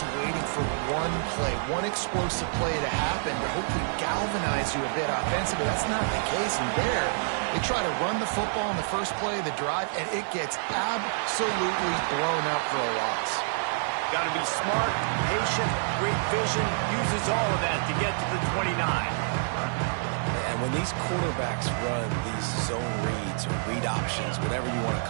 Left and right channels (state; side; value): silent; left; digital silence